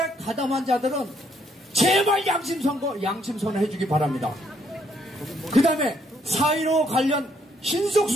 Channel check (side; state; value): both; normal; correlation 0.70